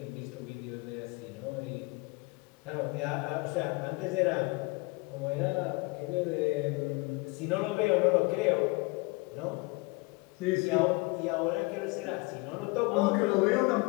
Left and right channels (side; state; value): right; quieter; 26.3 dB